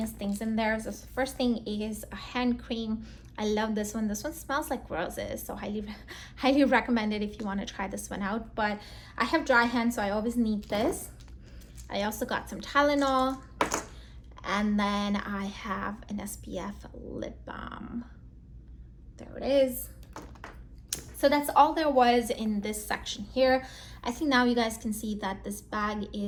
things in there. So the first thing is a hand cream. I love this one. This one smells like roses, so highly recommend it if you want to try this one out. But I have dry hands, so I always need this. I also got some Tylenol, and then I have an SPF lip balm. There it is. So that's all there was in this section here. I think now you guys can see that this bag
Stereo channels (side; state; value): both; identical; correlation 1.00